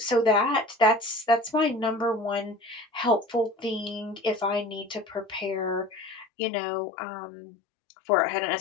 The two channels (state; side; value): drops out; right; at 6.2 s